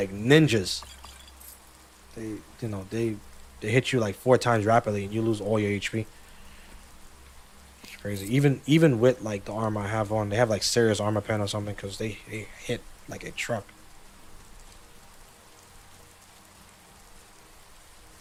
ninjas. They hit you like 4 times rapidly and you lose all your HP. It's crazy. Even with like the armor I have on, they have like serious armor pen or something because they hit like a truck.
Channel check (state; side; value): identical; both; correlation 1.00